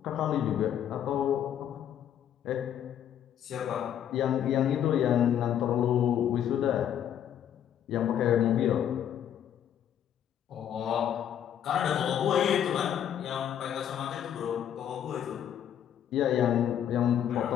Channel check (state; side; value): quieter; right; 9.8 dB